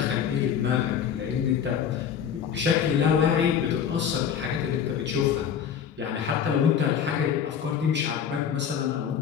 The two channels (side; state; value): right; quieter; 8.2 dB